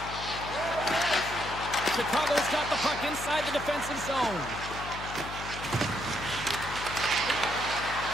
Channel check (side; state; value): left; noise; hum, 10 dB below the sound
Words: Chicago's got the puck inside the defensive zone.